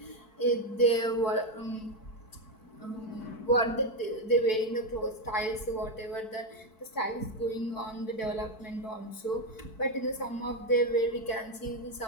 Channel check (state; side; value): late; right; 4.6 ms